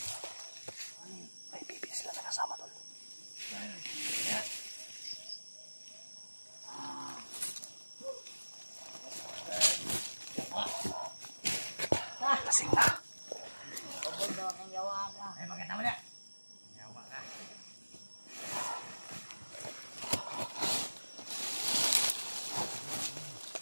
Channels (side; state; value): both; inverted; correlation -1.00